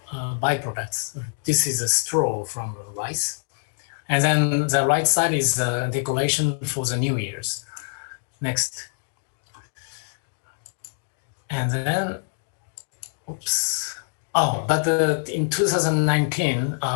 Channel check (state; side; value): silent; right; digital silence